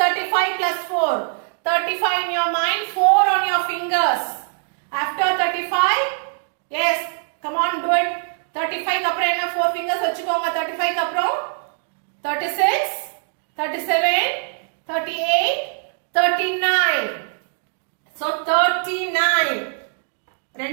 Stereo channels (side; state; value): left; silent; 64 dB below the other